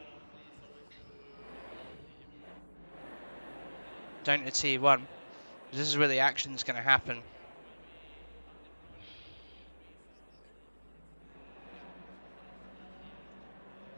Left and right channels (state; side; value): inverted; both; correlation -1.00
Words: down to T1. This is where the action's going to happen.